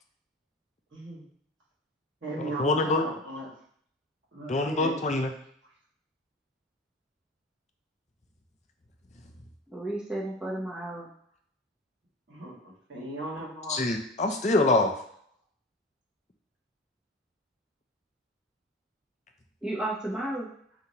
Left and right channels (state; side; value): normal; both; correlation 0.35